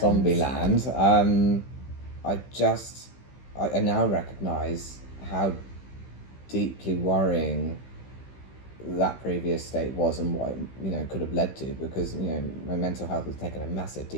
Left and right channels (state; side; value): late; right; 15 ms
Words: land, I now recognise how deeply worrying that previous state was, and what it, you know, could have led to, because, you know, my mental health was taking a massive